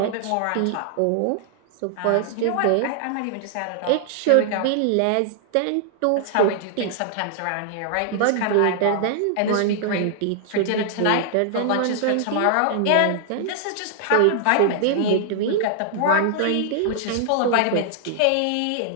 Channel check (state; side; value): different; both; correlation -0.01